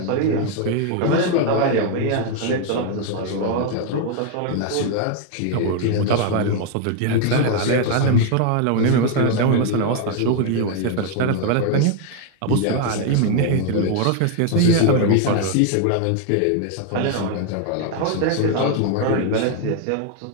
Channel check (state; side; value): different; both; correlation 0.00